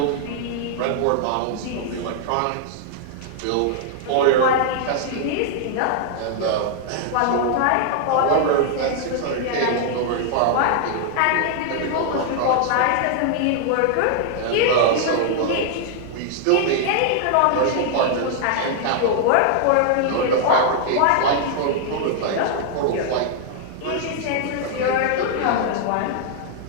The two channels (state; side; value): different; both; correlation 0.00